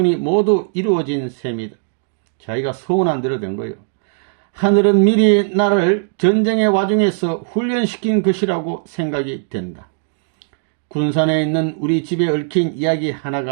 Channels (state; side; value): silent; left; digital silence